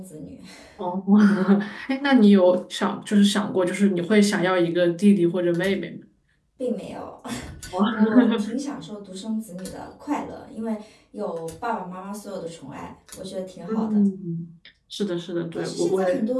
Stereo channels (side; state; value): both; identical; correlation 1.00